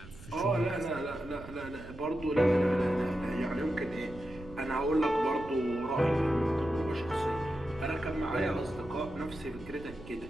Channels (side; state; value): right; noise; rumble, 16 dB below the sound